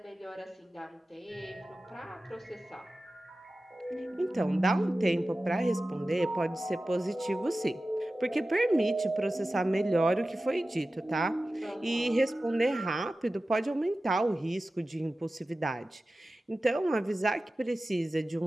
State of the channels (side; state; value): both; normal; correlation 0.95